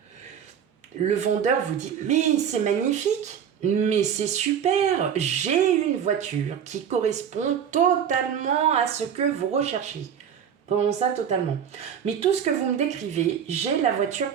le vendeur vous dit, mais c'est magnifique, mais c'est super, j'ai une voiture qui correspond totalement à ce que vous recherchez. Comment ça, totalement? Mais tout ce que vous me décrivez, j'ai la voiture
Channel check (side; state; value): left; quieter; 8.3 dB